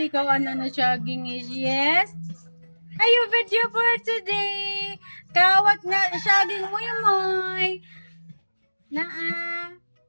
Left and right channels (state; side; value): inverted; both; correlation -1.00